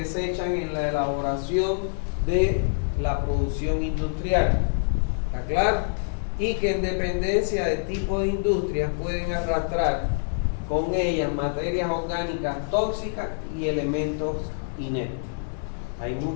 en la elaboración de la producción industrial. ¿Está claro? Y que en dependencia del tipo de industria pueden arrastrar con ellas materias orgánicas tóxicas y elementos inertes. Hay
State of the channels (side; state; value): right; silent; digital silence